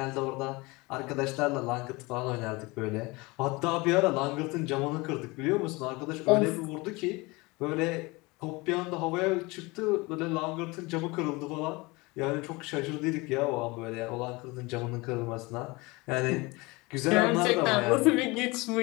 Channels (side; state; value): right; quieter; 24.4 dB